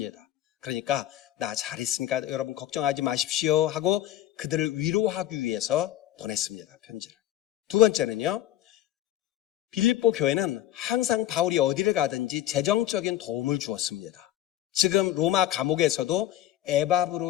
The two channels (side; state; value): right; quieter; 13.2 dB